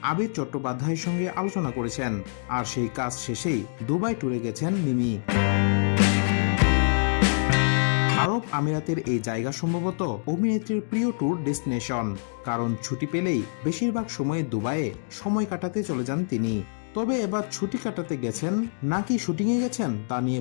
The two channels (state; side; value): silent; right; digital silence